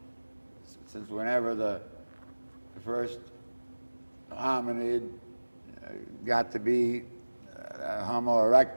since whenever the first hominid got to be Homo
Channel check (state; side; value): inverted; both; correlation -1.00